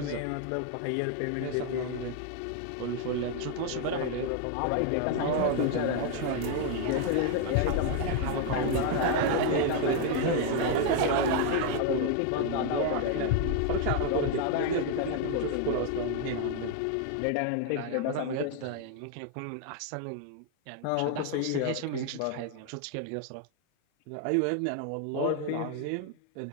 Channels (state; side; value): different; both; correlation 0.00